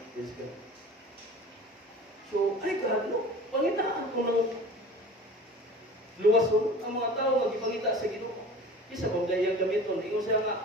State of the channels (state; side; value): normal; both; correlation 0.40